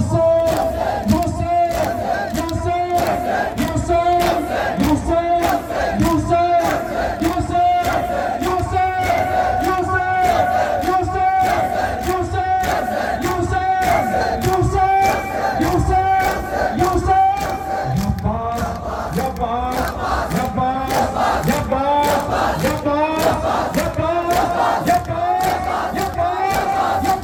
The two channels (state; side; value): identical; both; correlation 1.00